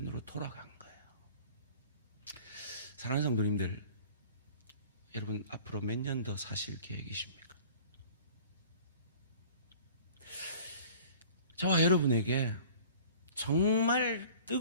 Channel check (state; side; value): inverted; both; correlation -0.46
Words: 돌아간 거예요. 사랑하는 성도님들, 여러분 앞으로 몇 년 더 사실 계획이십니까? 저와 여러분에게 정말